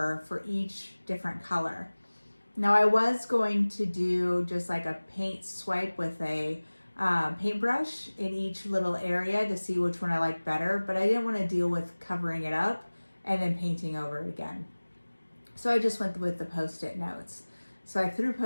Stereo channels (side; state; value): both; inverted; correlation -1.00